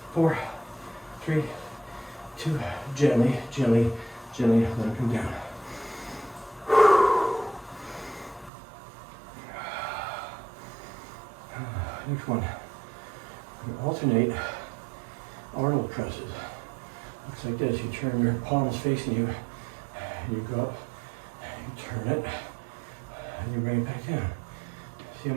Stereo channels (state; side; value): drops out; left; at 8.5 s